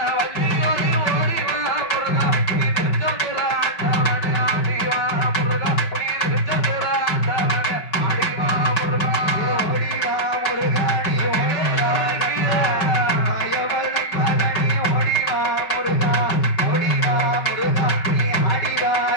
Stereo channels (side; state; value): right; late; 5.2 ms